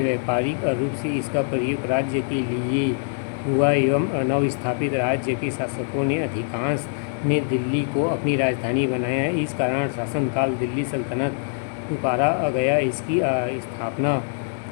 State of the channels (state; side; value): silent; right; digital silence